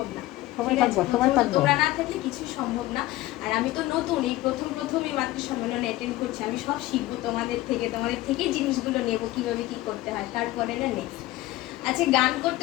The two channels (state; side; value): quieter; right; 17.0 dB